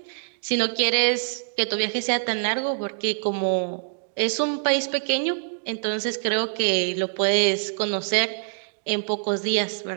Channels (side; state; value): left; silent; digital silence